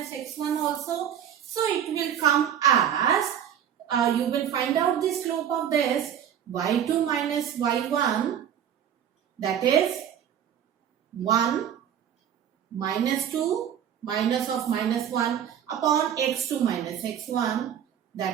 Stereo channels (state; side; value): quieter; left; 9.4 dB